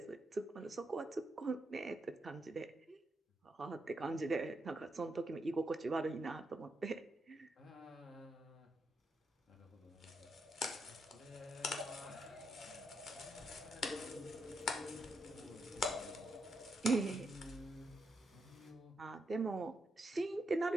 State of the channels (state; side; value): normal; both; correlation 0.81